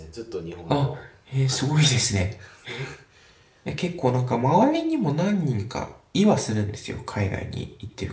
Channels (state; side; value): identical; both; correlation 1.00